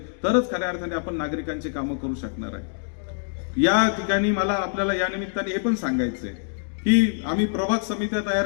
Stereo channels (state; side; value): silent; right; digital silence